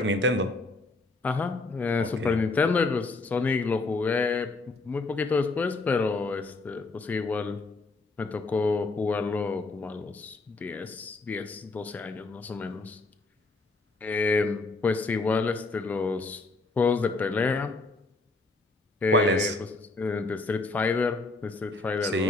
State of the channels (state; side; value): quieter; right; 3.4 dB